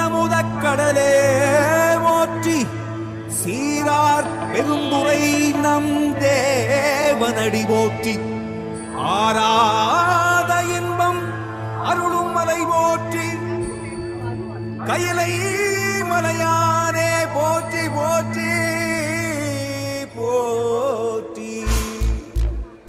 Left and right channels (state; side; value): identical; both; correlation 1.00